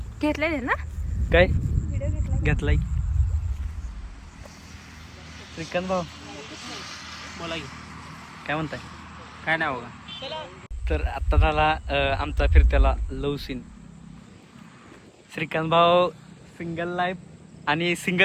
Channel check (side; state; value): both; identical; correlation 1.00